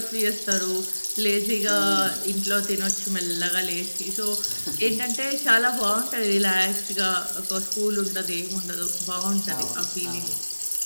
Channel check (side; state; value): both; inverted; correlation -1.00